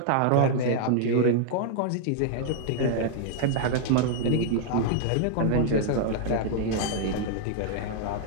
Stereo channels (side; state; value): both; different; correlation -0.01